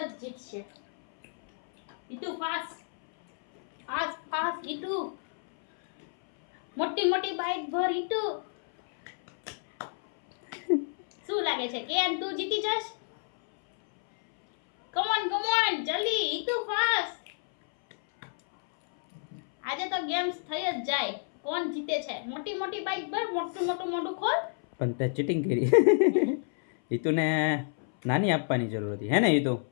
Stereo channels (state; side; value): silent; right; 59 dB below the other